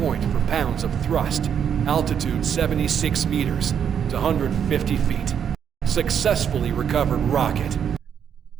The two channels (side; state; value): left; quieter; 8.1 dB